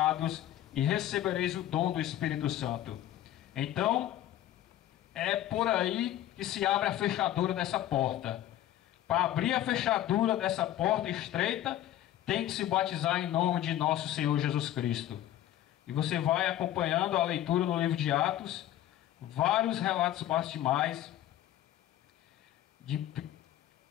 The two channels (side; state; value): right; quieter; 12.8 dB